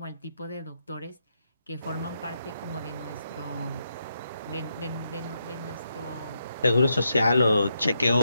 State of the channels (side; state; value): both; inverted; correlation -0.82